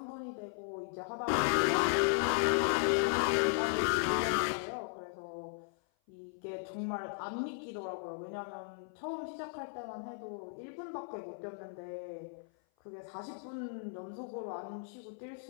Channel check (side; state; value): right; silent; 54 dB below the other